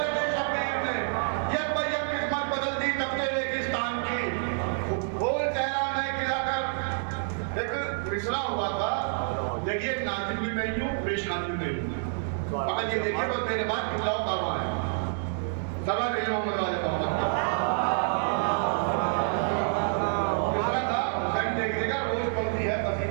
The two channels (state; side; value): silent; left; digital silence